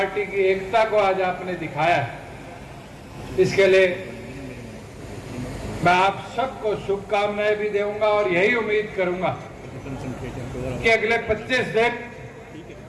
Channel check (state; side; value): identical; both; correlation 1.00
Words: की एकता को आज आपने दिखाया है, इसके लिए मैं आप सबको शुभकामनाएं भी दूंगा और यही उम्मीद करूंगा कि अगले 25 दिन